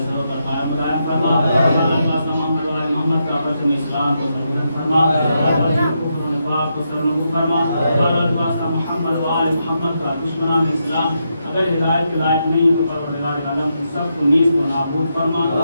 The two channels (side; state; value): both; inverted; correlation -0.83